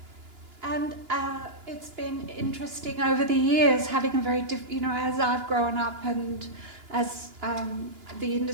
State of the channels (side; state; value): left; late; 2.9 ms